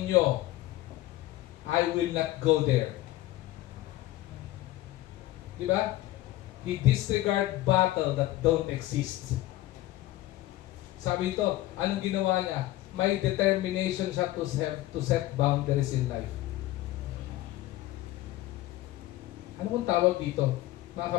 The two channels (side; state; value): right; quieter; 16.2 dB